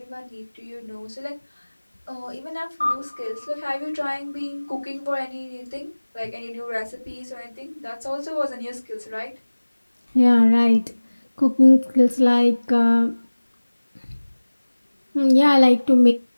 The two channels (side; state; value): both; inverted; correlation -1.00